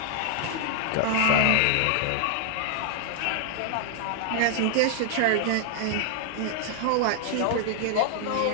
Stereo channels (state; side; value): different; both; correlation 0.00